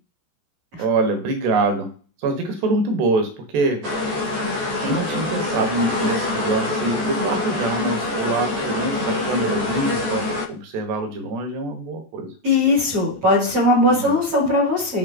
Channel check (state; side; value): late; left; 14 ms